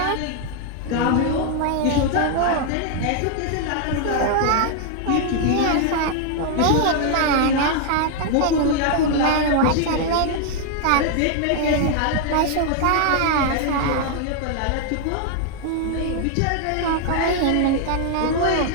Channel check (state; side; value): different; both; correlation 0.00